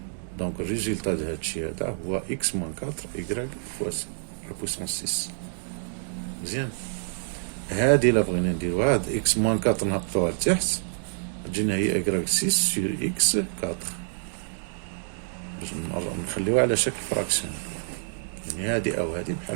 دونك الريزلتا د هادشي هذا هو X moins 4 Y fois la puissance 6. مزيان. هادي إلا بغينا نديروها هاد X moins 4 نهبطوها لتحت تجينا هي Y 6 sur X 4 باش نخليوها على شكل فراكسيون. يعني هادي أو هادي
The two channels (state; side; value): silent; left; digital silence